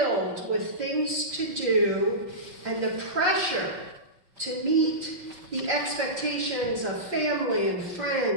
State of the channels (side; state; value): left; late; 5.5 ms